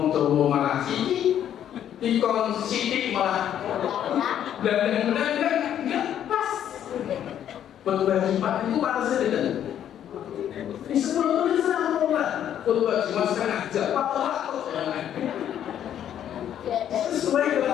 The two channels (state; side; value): quieter; right; 10.2 dB